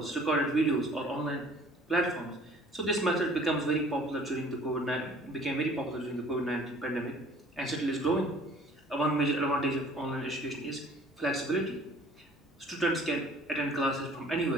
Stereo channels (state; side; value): normal; both; correlation 0.52